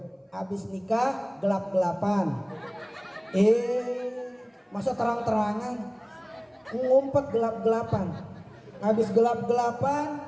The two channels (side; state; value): both; identical; correlation 1.00